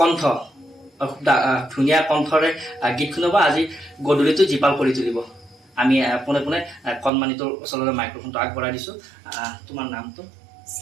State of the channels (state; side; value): drops out; left; at 7.1 s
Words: কণ্ঠ, ধুনীয়া কণ্ঠৰে গীত শুনাব। আজি গধূলিটো জীপাল কৰি তুলিব। আমি পোনে পোনে কণমানিটোৰ ওচৰলৈ মাইক্ৰফোনটো আগবঢ়াই দিছোঁ। তোমাৰ নামটো?